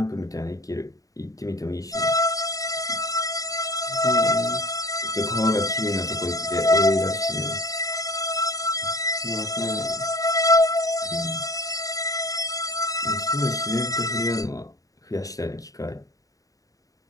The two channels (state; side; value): late; right; 0.17 ms